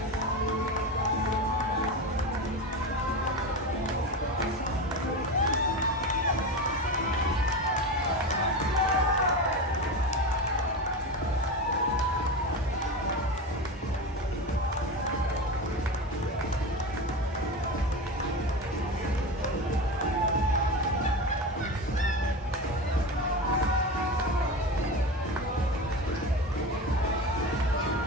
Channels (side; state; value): both; normal; correlation 0.24